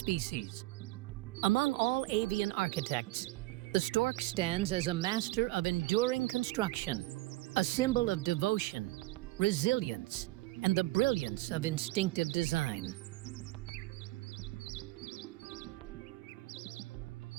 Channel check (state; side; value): quieter; left; 18.9 dB